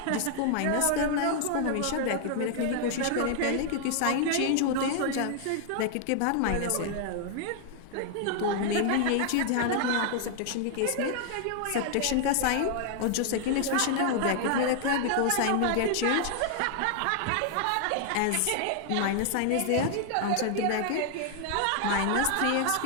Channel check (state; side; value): different; both; correlation 0.00